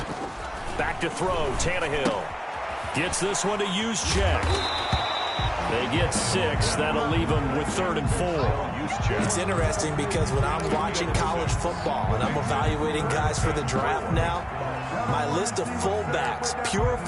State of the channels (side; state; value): both; identical; correlation 1.00